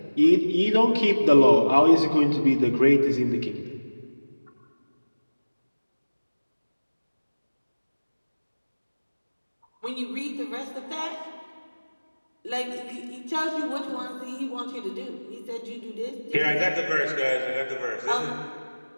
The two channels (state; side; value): inverted; both; correlation -1.00